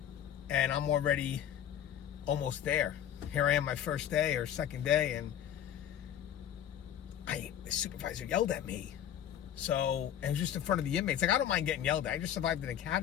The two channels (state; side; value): quieter; right; 10.3 dB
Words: And I'm already almost there. Here I am my first day or second day, and the supervisor yelled at me. So, and it was just in front of the inmates. Like, I don't mind getting yelled at. I just survived an